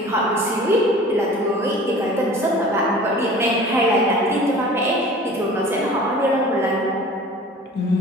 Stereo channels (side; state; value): both; normal; correlation 0.44